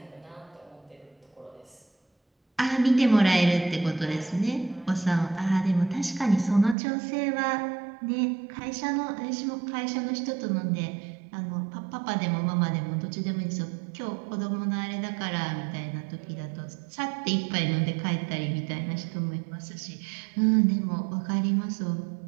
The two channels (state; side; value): drops out; left; at 6.8 s